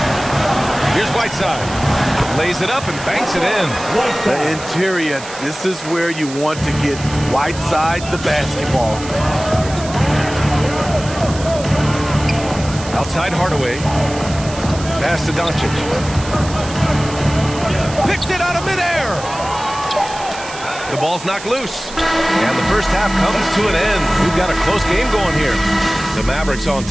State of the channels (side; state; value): right; noise; hiss, 13 dB below the sound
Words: Here's Whiteside. Lays it up and banks it in. The interior, this is where you want to get Whiteside the basketball. Outside Hardaway. Pass to Doncic. Picked it out of midair. The ball's knocked loose. And the first half comes to an end. We've got a close game going here. The Mavericks on